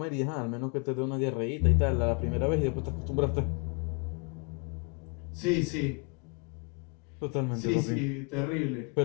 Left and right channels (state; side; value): quieter; right; 33.6 dB